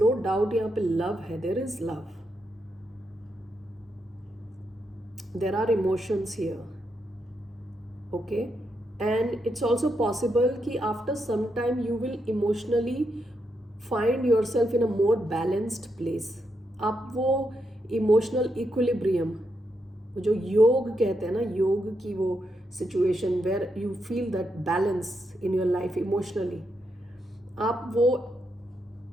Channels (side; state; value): both; normal; correlation 0.82